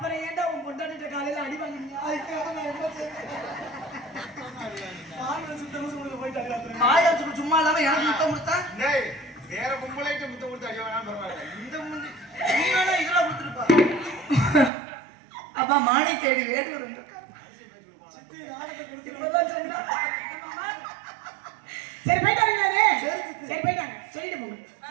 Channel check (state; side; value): drops out; left; at 14.7 s